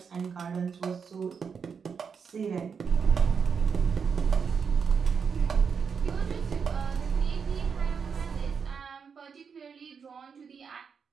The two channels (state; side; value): quieter; left; 6.2 dB